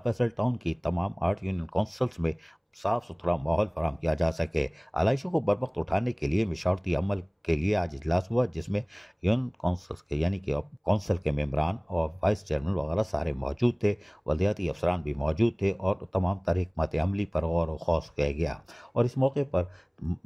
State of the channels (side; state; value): both; identical; correlation 1.00